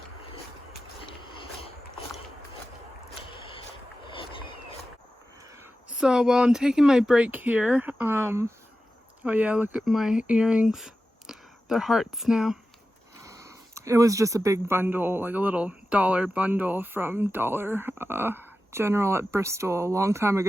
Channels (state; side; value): normal; both; correlation 0.93